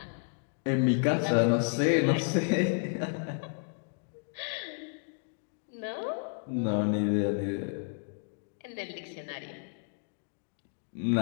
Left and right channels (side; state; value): right; silent; 57 dB below the other